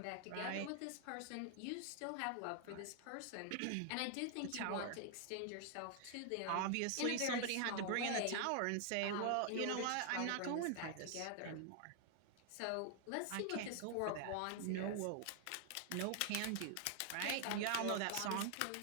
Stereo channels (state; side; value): different; both; correlation 0.00